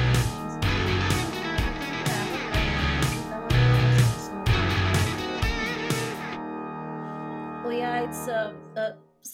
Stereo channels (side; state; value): both; identical; correlation 1.00